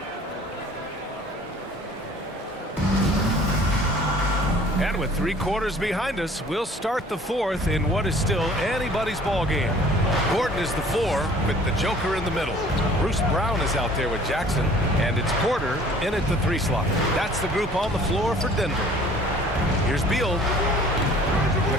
And with 3 quarters behind us, we'll start the fourth in what is still anybody's ball game. Gordon is the 4 with the Joker in the middle. Bruce Brown is out there with Jackson, and it's Porter in at the 3 slot. That's the group on the floor for Denver. Here's Beal.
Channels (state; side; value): normal; both; correlation 0.52